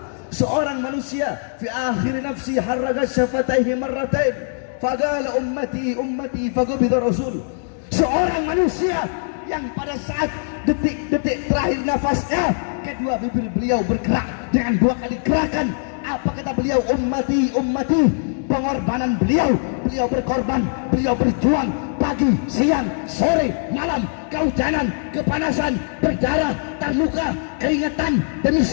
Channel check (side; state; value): right; silent; digital silence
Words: seorang manusia fi akhir nafsi harraga syafataihi marratain faqala ummati ummati faqubida rasul, seorang manusia yang pada saat detik-detik terakhir nafasnya kedua bibir beliau bergerak dengan 2 kali gerakan. Apa kata beliau? Ummati ummati. Pengorbanan beliau, beliau berkorban, beliau berjuang pagi, siang, sore, malam, kehujanan, kepanasan, berdarah, terluka, keringetan. Demi